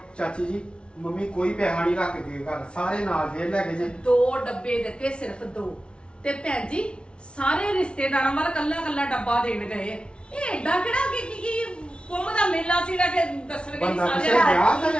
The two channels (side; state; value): right; late; 0.057 ms